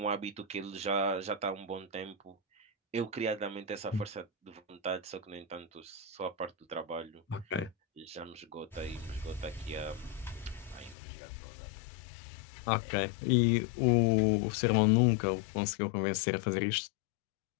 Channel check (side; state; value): right; drops out; at 11.0 s